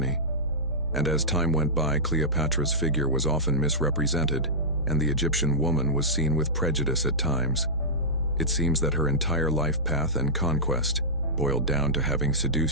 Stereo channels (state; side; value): noise; right; hum, 9 dB below the sound